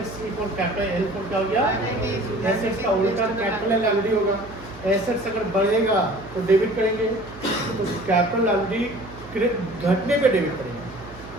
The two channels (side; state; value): right; noise; hum, 18 dB below the sound